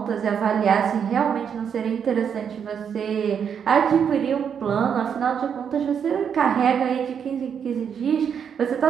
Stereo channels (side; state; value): left; quieter; 7.6 dB